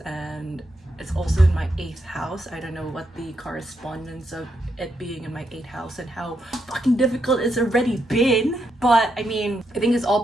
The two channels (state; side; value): normal; both; correlation 0.81